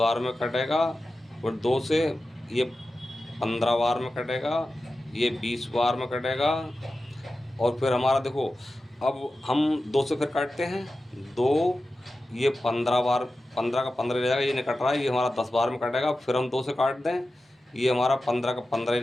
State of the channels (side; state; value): both; normal; correlation 0.93